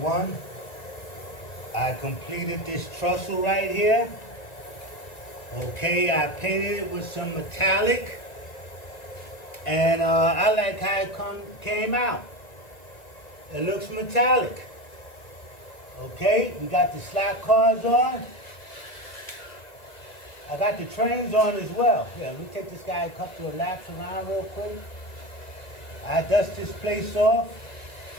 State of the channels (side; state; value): right; late; 1.7 ms